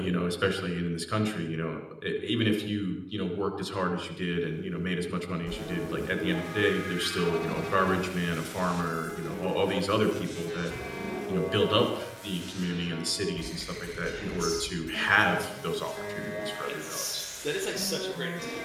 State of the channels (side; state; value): both; identical; correlation 1.00